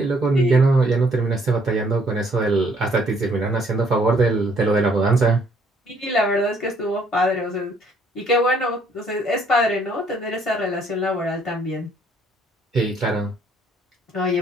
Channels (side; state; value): both; normal; correlation 0.64